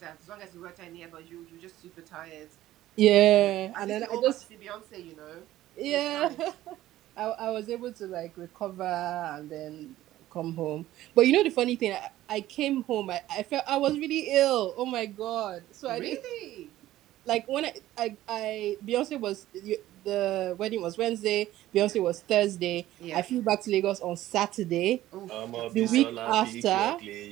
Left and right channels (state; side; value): quieter; left; 14.7 dB